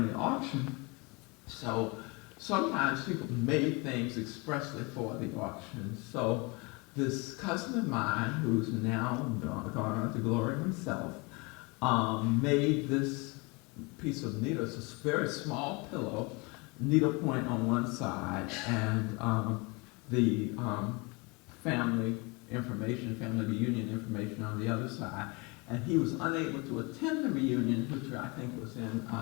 auction. So sometimes people made things expressly for the auction. So this cousin of mine, who's now gone on to glory himself, made this piece of needle. It's a very small pillow, needle point on one side, and the family information, family reunion information on the other side. and he was unable to attend the reunion, which I think was in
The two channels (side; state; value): right; quieter; 28.2 dB